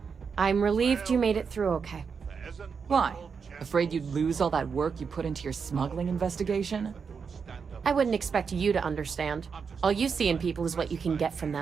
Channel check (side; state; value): left; quieter; 5.9 dB